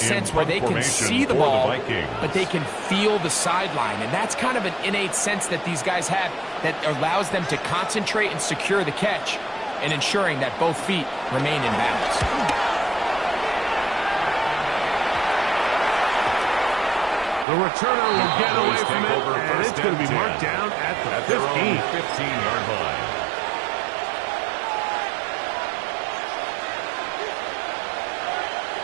where they can see the the ball, Vikings. but they can feel the sideline. And that's kind of an innate sense that these guys have that allows them to concentrate and secure the catch and ensuring that both feet remain in bounds. The returner will get away from it, and it's going to be marked down at the 15. 15-yard line.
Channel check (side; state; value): left; drops out; at 17.4 s